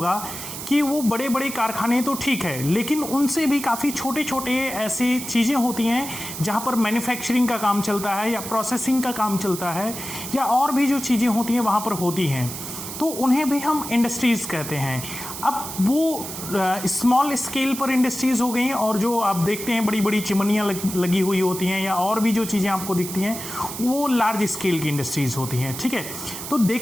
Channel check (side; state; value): right; noise; hiss, 8 dB below the sound